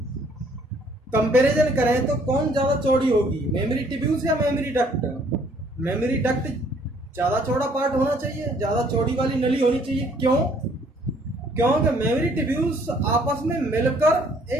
कंपैरिजन करें तो कौन ज्यादा चौड़ी होगी, मेमोरी ट्यूब्यूल्स या मेमोरी डक्ट? मेमोरी डक्ट ज्यादा चौड़ा पार्ट होना चाहिए, ज्यादा चौड़ी वाली नली होनी चाहिए। क्यों? क्योंकि मेमोरी ट्यूब्यूल्स आपस में मिलकर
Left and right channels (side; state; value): both; normal; correlation 0.61